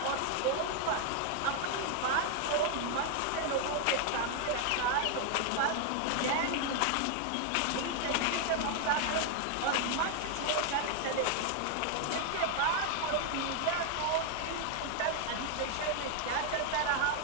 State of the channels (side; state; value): both; different; correlation 0.00